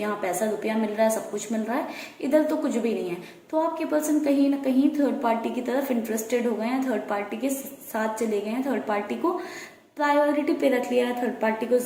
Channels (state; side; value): identical; both; correlation 1.00